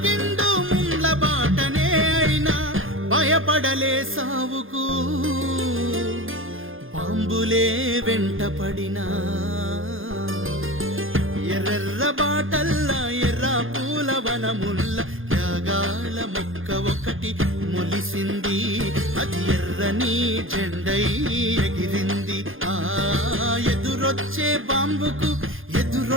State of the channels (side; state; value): left; late; 0.59 ms